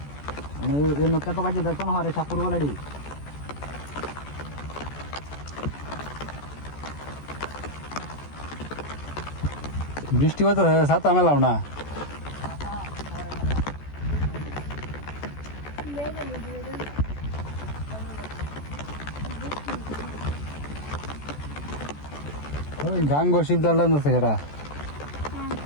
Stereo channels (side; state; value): right; late; 14 ms